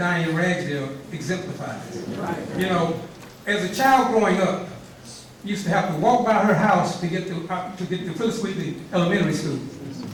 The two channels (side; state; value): both; identical; correlation 1.00